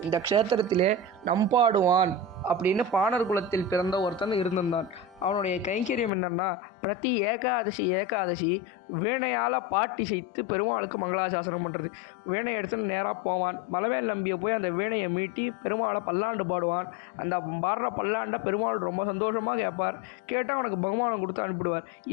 இந்த க்ஷேத்திரத்திலே நம்பாடுவான் அப்படின்னு பாணர் குலத்தில் பிறந்த ஒருத்தன் இருந்திருந்தான். அவனுடைய கைங்கரியம் என்னன்னா, பிரதி ஏகாதசி வீணையால் பாட்டி செய்து பெருமாளுக்கு மங்களாசாசனம் பண்ணுறது. வீணையை எடுத்துன்னு நேராக போவான். மலவேல் நம்பியை போய் அந்த வீணையை மீட்டி பெருமாளை பல்லாண்டு பாடுவான். அந்த பாடுற பல்லாண்டை பெருமாள் ரொம்ப சந்தோஷமாக கேட்பார். கேட்டால் அவனுக்கு பகுமானம் கொடுத்து அனுப்பிடுவார்.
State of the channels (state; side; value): drops out; right; at 6.1 s